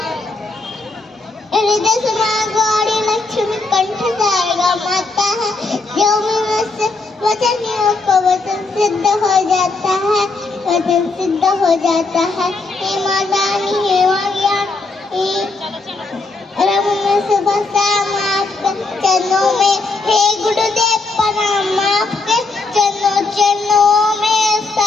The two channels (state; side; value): quieter; right; 3.7 dB